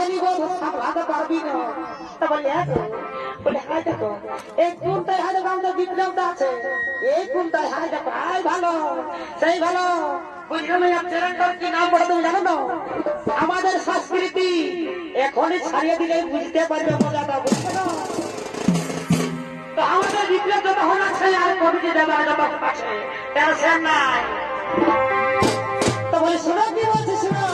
নিব সামলাতে পারবি না। তা বললি হ্যাঁ তো, বলে হ্যাঁ দেখো এই কোনটাই হাতে গামটা বিপ্লবটা আছে, এই কোনটাই হাতে দেখো আই ভালো সেই ভালো। বুঝলাম এই চ্যানেলটার কি নাম পড়ে তুমি জানো না? আমাদের সংস্কৃতি এখনই ছাড়িয়ে দিলে বুঝতে পারবে মজাটা, বুঝতে না? তো আমাদের বিপ্লব যত হল আছে আর কবিটি দেবার যত আছে টেনশন নাই। তো বলি শোনো কি বলছি শোনো,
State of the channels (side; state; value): both; identical; correlation 1.00